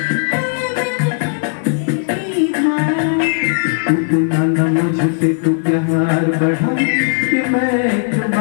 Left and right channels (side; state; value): right; silent; 69 dB below the other